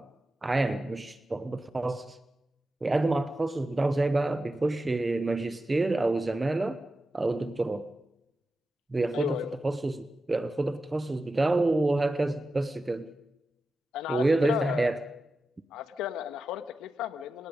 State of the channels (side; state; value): both; normal; correlation 0.92